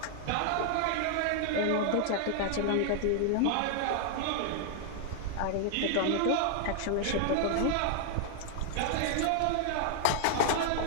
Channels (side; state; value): both; different; correlation 0.00